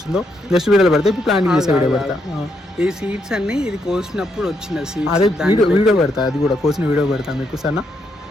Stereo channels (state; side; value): normal; both; correlation 0.78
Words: నెక్స్ట్ వీడియోలో పెడతా. ఇప్పుడు ప్లాంటింగ్ చేసే వీడియో పెడతా. ఈ సీడ్స్ అన్ని ఇది కోసినప్పుడు వచ్చిన సీడ్స్, అదే వీడియో పెడతా, అది కూడా కోసిన వీడియో పెడతా మీకు. సరేనా?